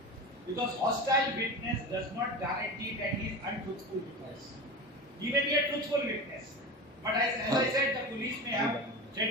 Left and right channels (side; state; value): both; normal; correlation 0.28